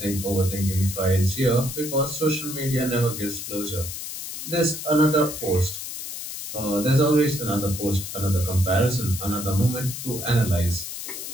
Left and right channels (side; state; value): left; noise; hiss, 8 dB below the sound